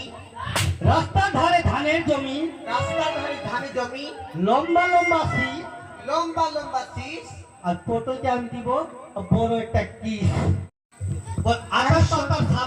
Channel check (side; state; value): both; identical; correlation 1.00